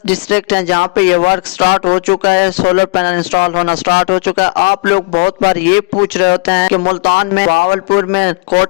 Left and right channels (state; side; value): quieter; right; 29.7 dB